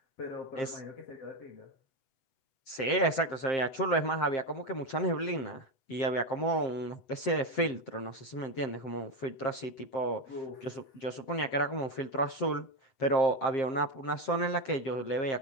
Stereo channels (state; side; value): late; right; 7.5 ms